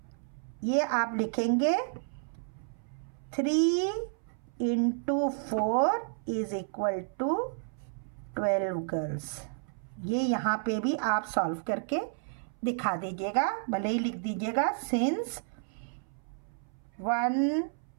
ये आप लिखेंगे 3 × 4 = 12 गर्ल्स। ये यहाँ पे भी आप सॉल्व करके दिखा दीजिएगा, भले ही लिख दीजिएगा since 1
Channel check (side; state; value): left; silent; 57 dB below the other